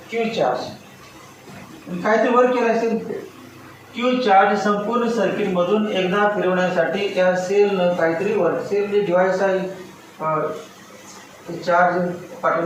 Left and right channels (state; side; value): identical; both; correlation 1.00